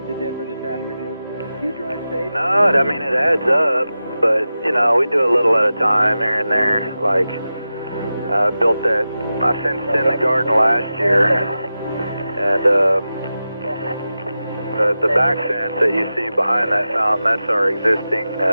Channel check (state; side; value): inverted; both; correlation -0.93